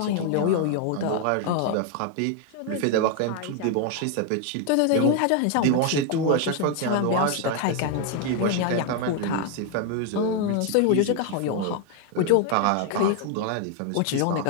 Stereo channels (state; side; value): different; both; correlation 0.01